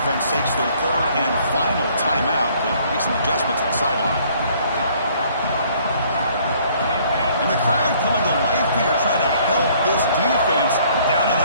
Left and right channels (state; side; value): inverted; both; correlation -0.61